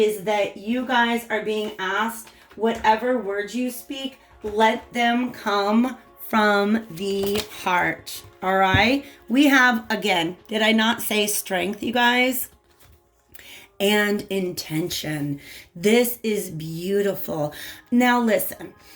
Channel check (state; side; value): identical; both; correlation 1.00